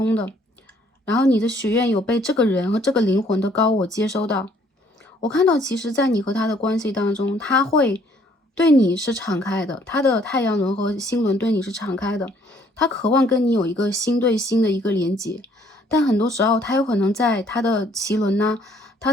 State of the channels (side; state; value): both; normal; correlation 0.63